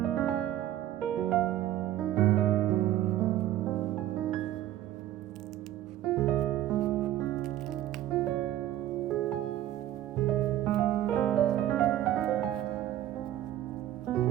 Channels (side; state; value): left; quieter; 13.0 dB